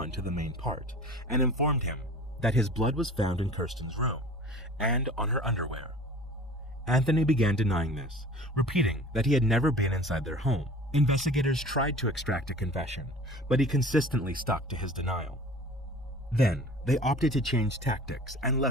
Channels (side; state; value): both; normal; correlation 0.43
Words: to the main part and informed him that his blood was found in Kirsten's room and on her underwear. Anthony began denying this, repeating that he had never been inside their home. Investigators tried to extract a confession, but he consistently stuck to his denial. Then, they opted to change tactics and